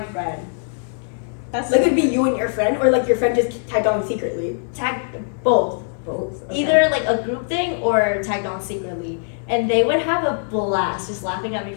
That's Like it'd be you and your friend, or like your friend just tagged on secretly. Tagged both. Both. Either like a group thing or tagged on secretly. And they would have a blast just laughing at me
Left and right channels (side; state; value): right; silent; 63 dB below the other